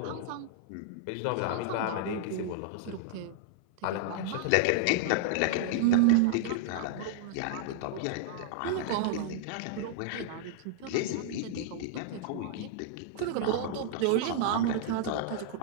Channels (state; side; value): different; both; correlation -0.01